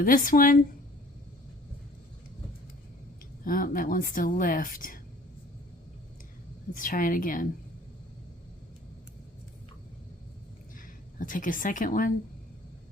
this one. Oh, that wants to lift. Let's try it again. I'll take a second one.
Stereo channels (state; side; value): normal; both; correlation 0.51